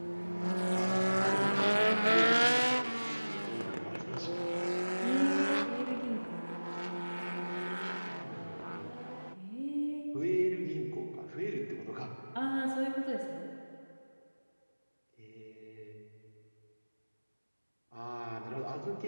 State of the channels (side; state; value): both; inverted; correlation -1.00